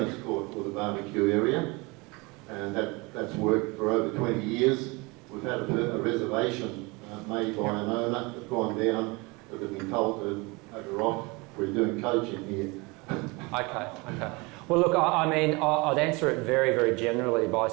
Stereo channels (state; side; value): quieter; left; 26.2 dB